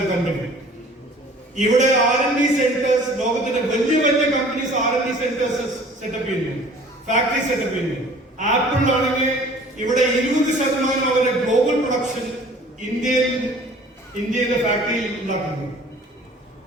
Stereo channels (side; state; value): both; normal; correlation 0.50